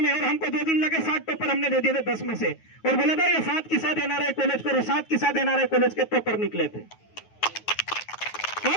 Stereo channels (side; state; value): right; late; 9.3 ms